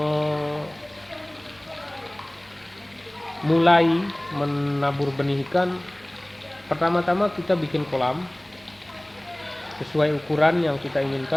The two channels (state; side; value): noise; right; hum, 29 dB below the sound